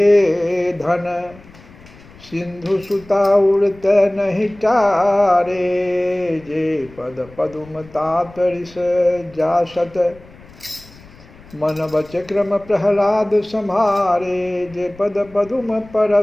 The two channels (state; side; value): noise; left; rumble, 22 dB below the sound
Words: धन, सिंधु सुता उड़त नहीं टारे, जे पद पद्म तातरिस जासत, मन बचक्रम प्रहलाद संहारे, जे पद पद्म